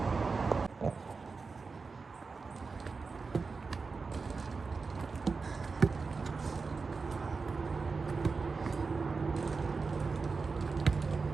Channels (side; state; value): left; quieter; 4.5 dB